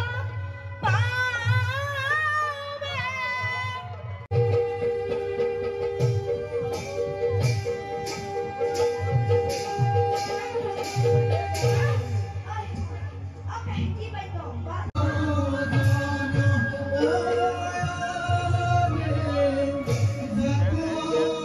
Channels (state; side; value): identical; both; correlation 1.00